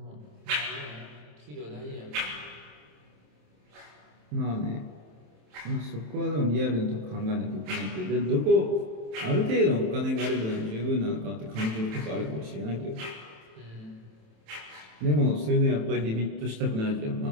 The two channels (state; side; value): late; left; 27 ms